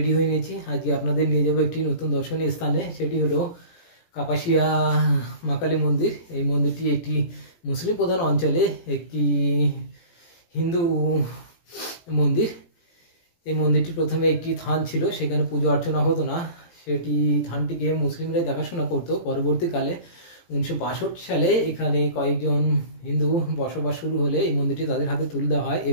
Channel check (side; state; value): right; late; 17 ms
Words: হয়ে নিয়েছি। আজকে আপনাদের নিয়ে যাবো একটি নতুন দর্শনীয় স্থানে। সেটি হলো কাপাসিয়া মা কালী মন্দির। এই মন্দিরটি একটি মুসলিম প্রধান অঞ্চলে একটি হিন্দু মন্দির। এই মন্দিরটি প্রথমে একটি থান ছিল, সেখানে পুজো অর্চনা হতো না। সেটি থানটিকে মুসলিমরাই দেখাশোনা করতো। পরবর্তীকালে 1962 সালে এখানে কয়েকজন হিন্দু বসবাস শুরু হলে এই মন্দিরটি তাদের হাতে তুলে দেওয়া হয়